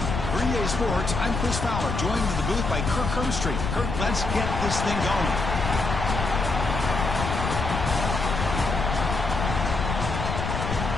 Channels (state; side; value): noise; left; rumble, 3 dB below the sound